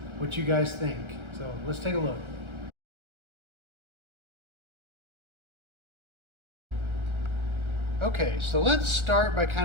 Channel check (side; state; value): left; late; 1.3 ms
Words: what you guys think. So let's take a look. Okay, so let's start by